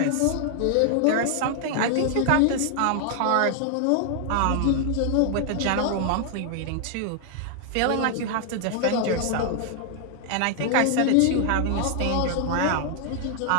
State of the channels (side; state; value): both; different; correlation 0.00